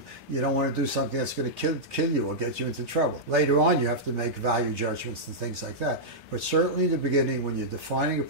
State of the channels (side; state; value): both; normal; correlation -0.09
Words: don't want to do something that's going to kill you or get you into trouble. Later on, you have to make value judgments and things like that. But certainly in the beginning, when you're defining a